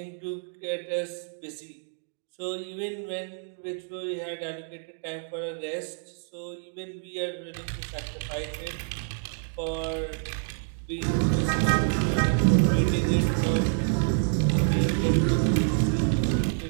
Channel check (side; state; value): left; silent; digital silence